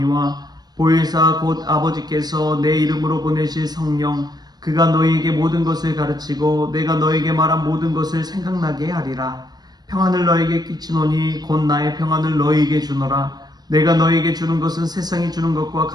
보혜사 곧 아버지께서 내 이름으로 보내실 성령 그가 너희에게 모든 것을 가르치고 내가 너희에게 말한 모든 것을 생각나게 하리라. 평안을 너희에게 끼치노니 곧 나의 평안을 너희에게 주노라. 내가 너희에게 주는 것은 세상이 주는 것과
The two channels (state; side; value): late; left; 0.19 ms